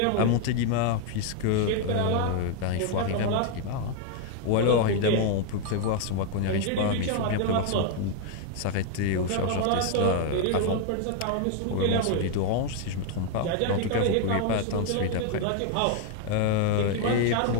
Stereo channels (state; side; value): different; both; correlation 0.01